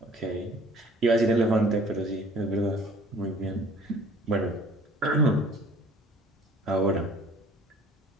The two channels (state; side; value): normal; both; correlation 0.51